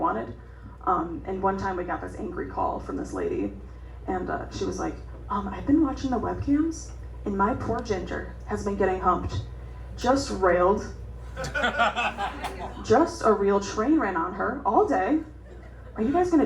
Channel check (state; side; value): identical; both; correlation 1.00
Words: And one time we got this angry call from this lady. And she was like, I've been watching the webcams, and my poor Ginger has been getting humped. Just railed. Just a real train ran on her all day. Are you guys